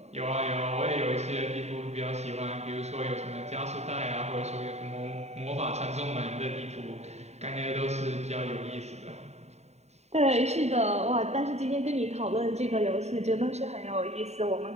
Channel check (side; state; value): left; late; 0.32 ms